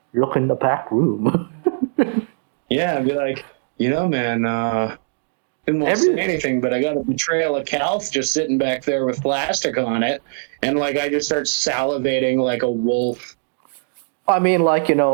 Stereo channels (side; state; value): left; silent; digital silence